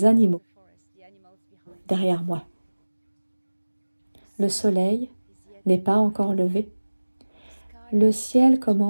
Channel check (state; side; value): inverted; both; correlation -1.00